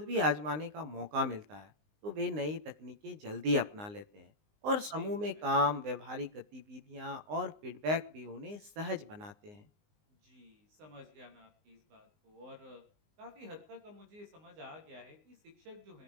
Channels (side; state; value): left; late; 19 ms